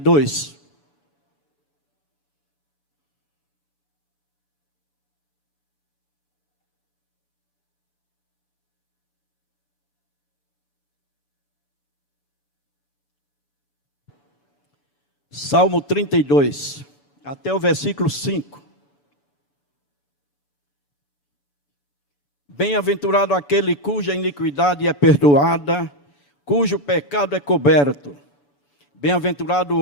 Salmo 32, até o versículo 5. Bem-aventurado aquele cuja iniquidade é perdoada, cujo pecado é coberto. Bem-aventurado o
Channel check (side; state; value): right; late; 7.0 ms